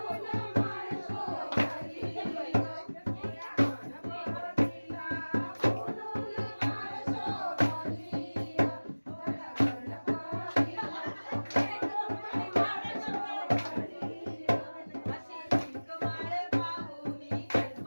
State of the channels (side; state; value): both; inverted; correlation -1.00